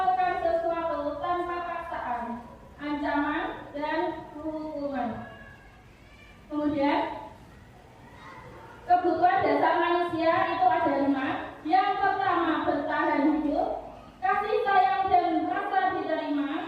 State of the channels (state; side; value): identical; both; correlation 1.00